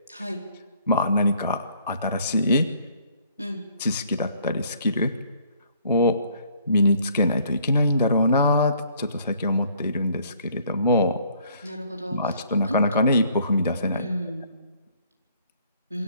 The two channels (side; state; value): both; inverted; correlation -0.61